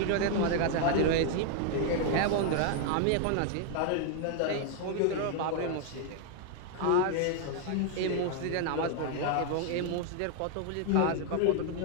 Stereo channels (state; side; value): different; both; correlation 0.00